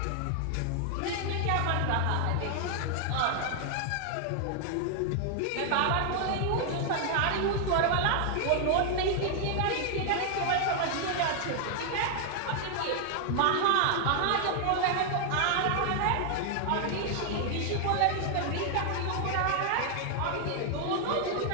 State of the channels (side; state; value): both; different; correlation 0.00